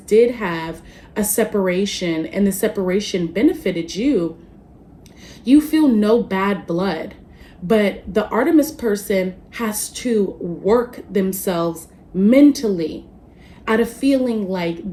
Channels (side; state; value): both; identical; correlation 1.00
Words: have a separation and the separation benefited you, you feel no bad blood. But the Artemis person has to work themselves mentally out of feeling like